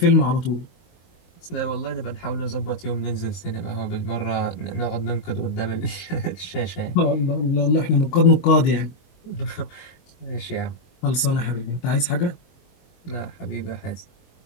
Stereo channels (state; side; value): late; right; 22 ms